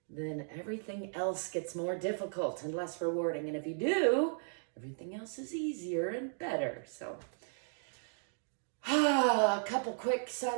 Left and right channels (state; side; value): silent; left; digital silence